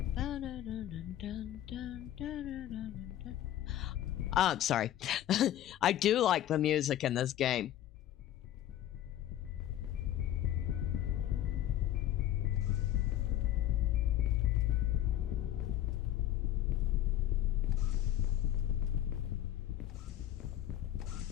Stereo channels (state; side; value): quieter; right; 12.4 dB